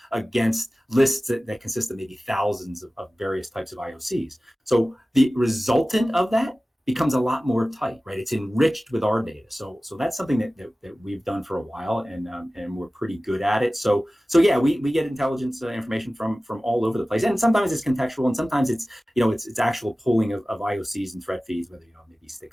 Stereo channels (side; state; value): both; normal; correlation 0.97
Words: against lists that consist of maybe thousands of various types of IOCs. So the resultant of that becomes a lot more tight, right? It's enriched with our data. So that's something that we've done for a while, and we're pretty good at it. So yeah, we get intelligence information from all over the place, and sometimes it's contextual, and sometimes it's it's actual pulling of IOCs and threat feeds, whether maybe